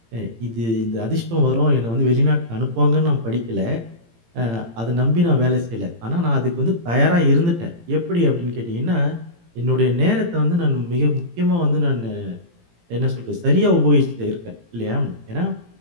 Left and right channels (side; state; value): left; late; 18 ms